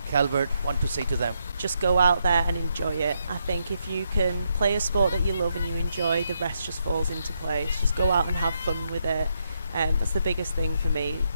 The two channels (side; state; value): both; inverted; correlation -0.78